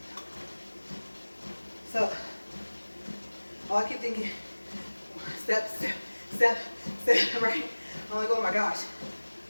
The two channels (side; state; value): both; inverted; correlation -1.00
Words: So thinking, step, step, step, step, right? I'm like, oh my gosh.